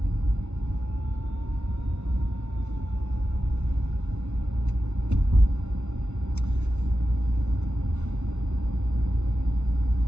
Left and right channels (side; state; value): left; late; 0.82 ms